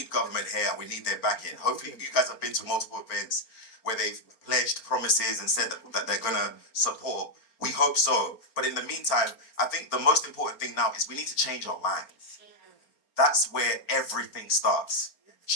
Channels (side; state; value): right; late; 4.4 ms